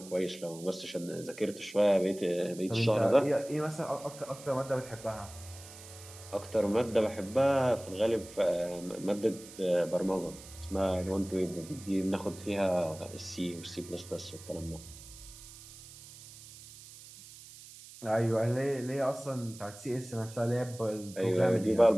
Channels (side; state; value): right; noise; hiss, 17 dB below the sound